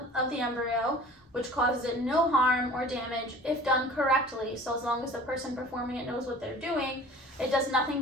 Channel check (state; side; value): normal; both; correlation 0.45